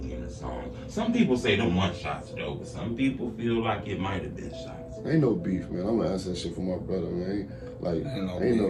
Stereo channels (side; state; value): both; identical; correlation 1.00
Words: in the song. Some people say them one shots though, but some people feel like it might have been shots. Ain't no beef, man. I'm gonna answer that shit for my brother, man.